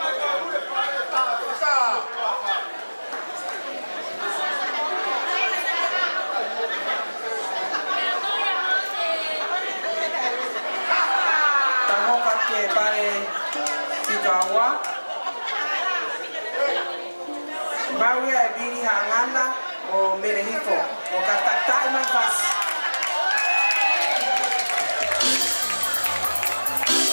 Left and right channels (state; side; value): inverted; both; correlation -1.00